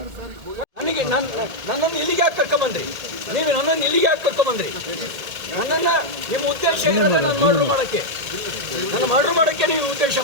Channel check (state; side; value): late; left; 1.8 ms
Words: ನನಗೆ ನನ್ನನ್ನು ಇಲ್ಲಿಗೆ ಯಾಕೆ ಕರ್ಕೊಂಬಂದ್ರಿ? ನೀವು ನನ್ನನ್ನು ಇಲ್ಲಿಗೆ ಯಾಕೆ ಕರ್ಕೊಂಬಂದ್ರಿ? ನನ್ನನ್ನ ನಿಮ್ಮ ಉದ್ದೇಶ ಏನಿದೆ? ನಾನು ಮರ್ಡರ್ ಮಾಡಕ್ಕೆ, ನನ್ನ ಮರ್ಡರ್ ಮಾಡಕ್ಕೆ ನೀವು ಉದ್ದೇಶ